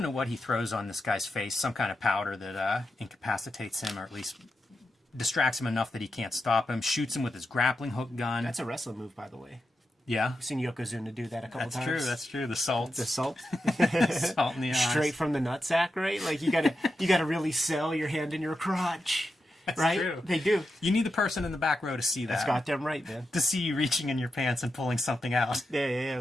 know what he throws on this guy's face. Some kind of powder that incapacitates him, or at least distracts him enough that he can't stop him. Shoots him with his grappling hook gun. That's a wrestling move, by the way. Yeah. I've seen Yokozuna do that a couple times. That's true. The salt. The salt. Salt in the eyes. Straight from the nutsack, right? Like, you gotta really sell your hand in your crotch. That's right? true. They do. You need the person in the back row to see that. That's goddamn right, man. To see you reaching in your pants and pulling something out. Yeah,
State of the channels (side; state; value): both; normal; correlation 0.88